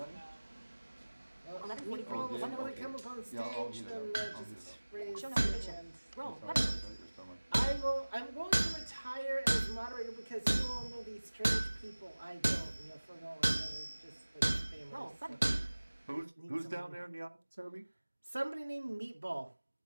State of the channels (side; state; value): both; inverted; correlation -1.00